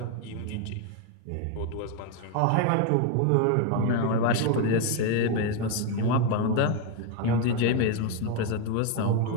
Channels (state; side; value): different; both; correlation 0.01